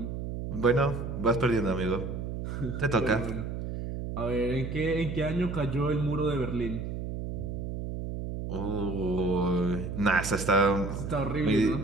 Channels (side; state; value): right; noise; hum, 5 dB below the sound